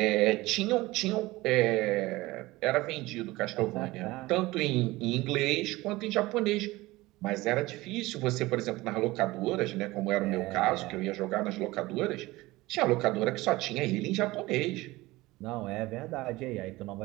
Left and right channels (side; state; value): left; quieter; 19.6 dB